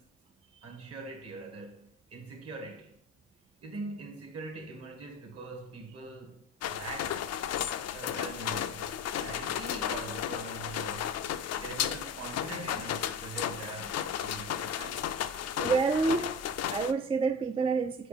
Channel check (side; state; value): both; normal; correlation 0.31